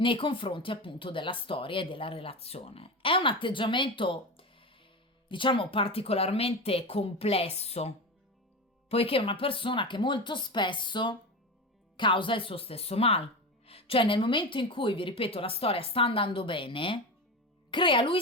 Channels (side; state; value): both; normal; correlation 0.23